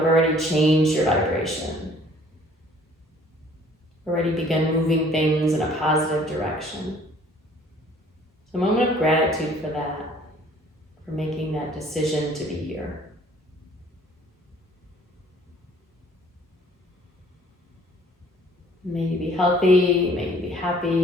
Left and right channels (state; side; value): normal; both; correlation 0.56